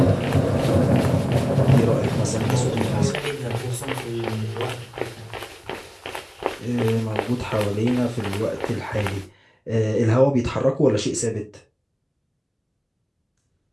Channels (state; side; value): identical; both; correlation 1.00